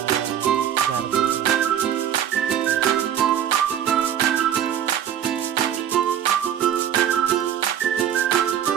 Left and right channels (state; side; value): quieter; left; 9.8 dB